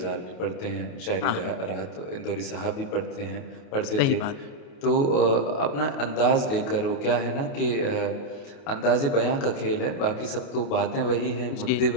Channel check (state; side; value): late; right; 28 ms